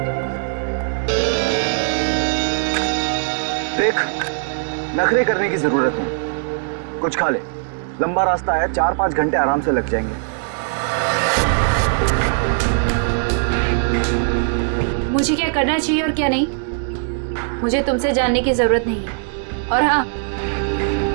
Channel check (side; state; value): left; silent; digital silence